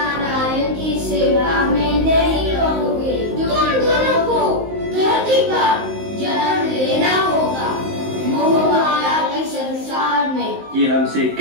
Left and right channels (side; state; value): left; late; 19 ms